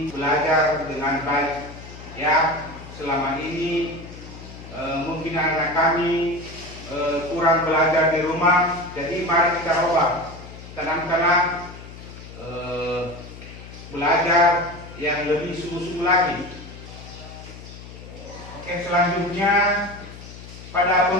belajar dengan baik. Ya, selama ini mungkin anak kami kurang belajar di rumah, jadi mari kita ubah tanam-tanam belajar yang lebih sungguh-sungguh lagi. Oke, selanjutnya pada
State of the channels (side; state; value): left; noise; hum, 15 dB below the sound